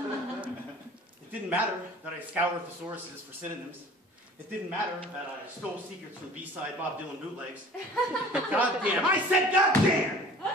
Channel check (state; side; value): normal; both; correlation 0.46